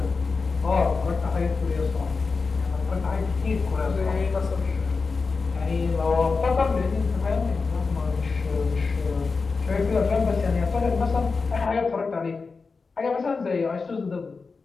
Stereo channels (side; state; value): right; quieter; 4.5 dB